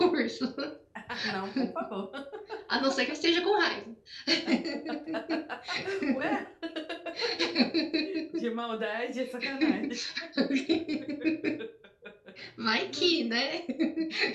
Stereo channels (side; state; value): both; identical; correlation 1.00